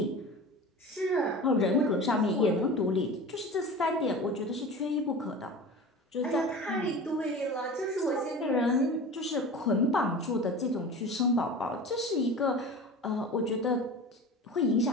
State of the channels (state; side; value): normal; both; correlation 0.35